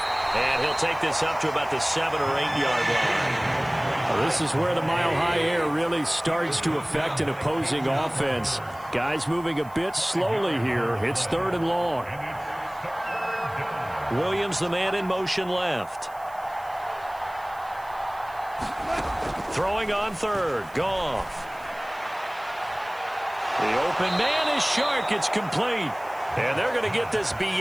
And he'll take this up to about the 7 or 8 yard line. Well, this is where the mile-high air really starts to affect an opposing offense. Guys moving a bit slowly here. It's 3rd and long. Williams, the man in motion left. Throwing on 3rd. Goff. The open man is Shark. It's complete. And they're going to get this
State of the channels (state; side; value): noise; right; hiss, 25 dB below the sound